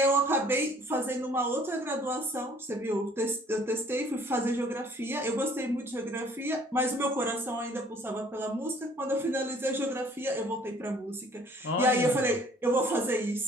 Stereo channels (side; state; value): both; normal; correlation 0.57